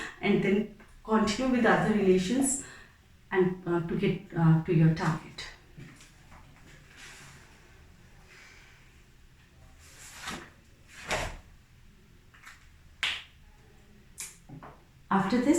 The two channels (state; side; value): identical; both; correlation 1.00